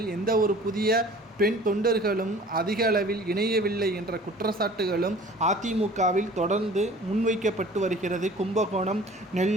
எந்த ஒரு புதிய பெண் தொண்டர்களும் அதிக அளவில் இணையவில்லை என்ற குற்றச்சாட்டுகளும் அதிமுகவில் தொடர்ந்து முன்வைக்கப்பட்டு வருகிறது. கும்பகோணம்,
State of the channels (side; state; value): both; normal; correlation 0.46